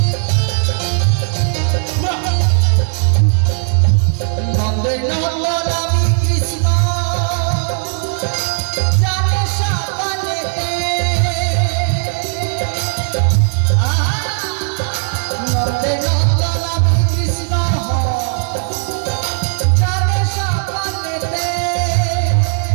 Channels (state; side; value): silent; left; digital silence